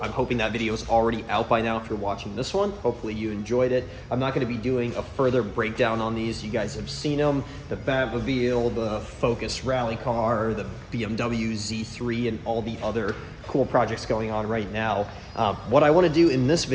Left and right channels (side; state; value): both; identical; correlation 1.00